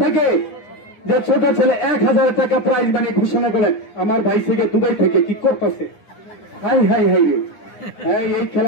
থেকে, যে ছোট ছেলে 1000 টাকা প্রাইজ মানি ঘোষণা করলেন। আমার ভাই থেকে দুবাই থেকে কি করতেছে, হাই হাই হাই রে, এই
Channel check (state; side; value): late; right; 9.7 ms